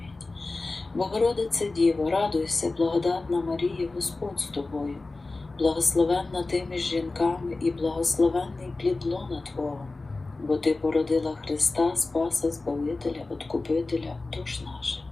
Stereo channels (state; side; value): quieter; right; 3.4 dB